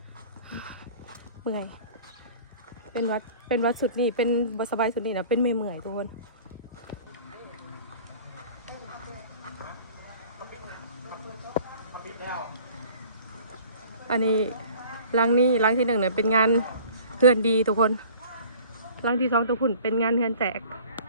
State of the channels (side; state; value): both; inverted; correlation -0.47